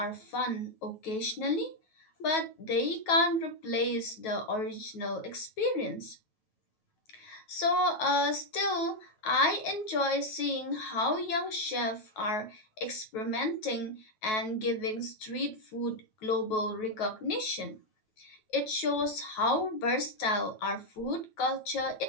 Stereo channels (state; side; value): late; right; 9.3 ms